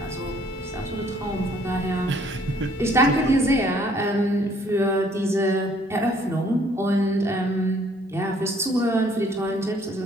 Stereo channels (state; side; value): normal; both; correlation 0.62